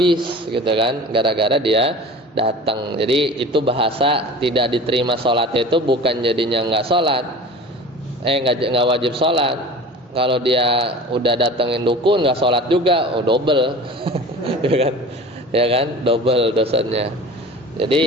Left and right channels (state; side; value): normal; both; correlation 0.38